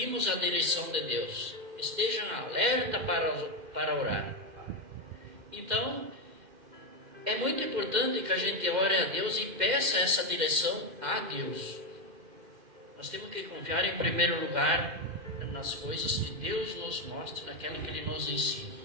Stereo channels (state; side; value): late; left; 2.1 ms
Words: a direção de Deus. Estejam alerta para orar. Então é muito importante que a gente ore a Deus e peça essa direção a Deus. Nós temos que confiar em primeiro lugar nas coisas que Deus nos mostra, naquilo que Ele nos ensina.